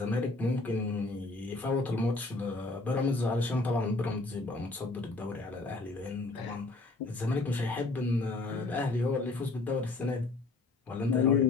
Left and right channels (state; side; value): quieter; right; 3.2 dB